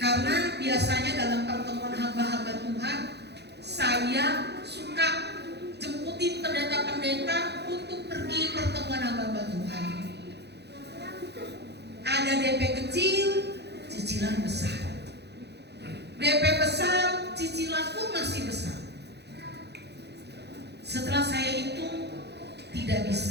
biasanya dalam pertemuan hamba-hamba Tuhan, saya suka jemputin pendeta-pendeta untuk pergi pertemuan hamba-hamba Tuhan. Ada DP kecil, cicilan besar. DP besar, cicilan pun masih besar. Setelah saya hitung, tidak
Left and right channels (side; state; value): left; late; 0.49 ms